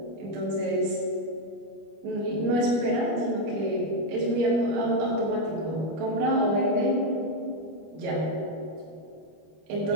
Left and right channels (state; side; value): late; left; 25 ms